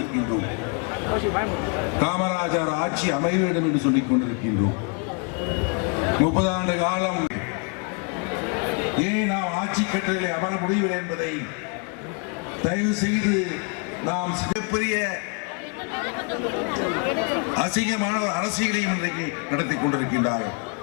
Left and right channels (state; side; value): quieter; right; 36.1 dB